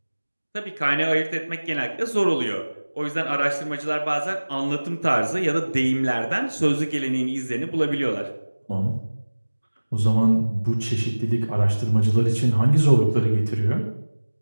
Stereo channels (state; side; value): inverted; both; correlation -1.00